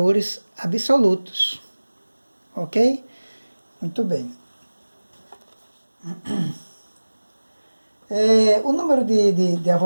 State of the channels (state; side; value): inverted; both; correlation -1.00